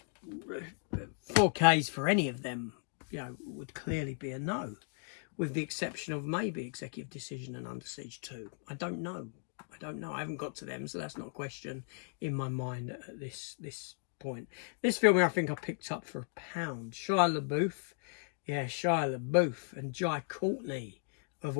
4Ks for any of them, you know, would clearly be a no, with the exception of maybe Executive Decision and Under Siege 2. I don't know. I haven't got to them, so that's not a question in my mind at this point. This film I think I picked up for £1. Shia LaBeouf. Yeah, Shia LaBeouf and Jai Courtney, of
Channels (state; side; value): silent; right; 54 dB below the other